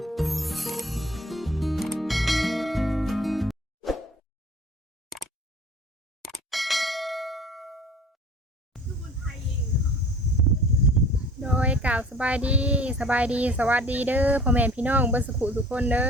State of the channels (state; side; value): normal; both; correlation 0.47